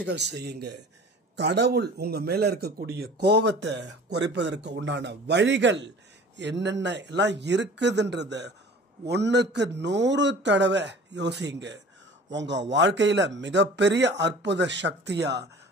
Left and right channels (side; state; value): both; normal; correlation 0.44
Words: செய்யுங்க. கடவுள் உங்க மேல இருக்கக்கூடிய கோபத்தை குறைப்பதற்கு உண்டான வழிகள் என்னென்ன எல்லாம் இருக்குதுன்றத 1க்கு 100 தடவை யோசிங்க. உங்க வாழ்க்கையில மிகப்பெரிய அற்புத சக்தியா